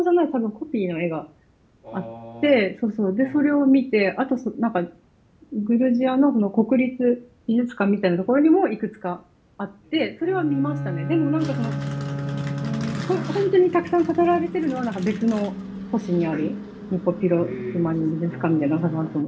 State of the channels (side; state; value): both; identical; correlation 1.00